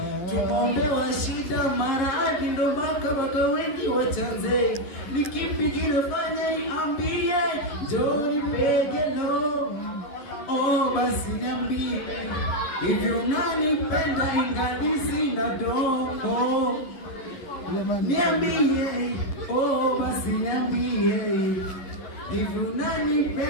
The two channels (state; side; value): late; right; 11 ms